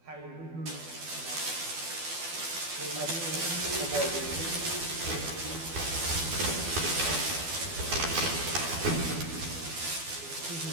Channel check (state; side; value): late; left; 12 ms